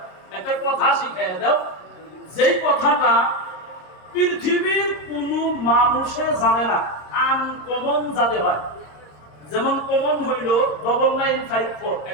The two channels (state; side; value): late; right; 26 ms